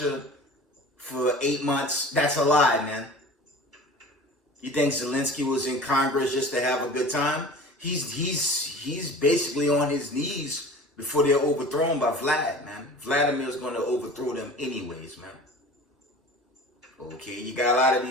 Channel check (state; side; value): normal; both; correlation 0.40